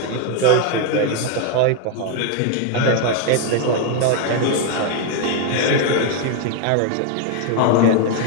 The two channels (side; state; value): both; different; correlation 0.01